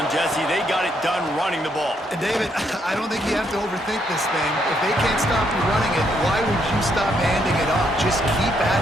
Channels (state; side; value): normal; both; correlation 0.74